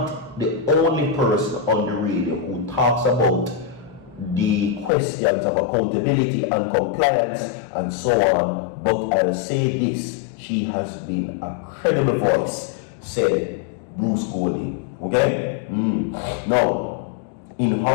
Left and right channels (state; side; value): drops out; right; at 4.9 s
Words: the only person on the radio who talks about the questions of accountability and compliance and so on, but I'll say this: she has been a credible voice, said Bruce Golding. Okay? Now, in